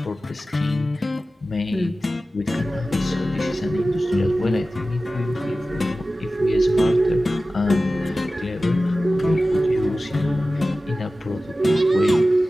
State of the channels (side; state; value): both; normal; correlation 0.95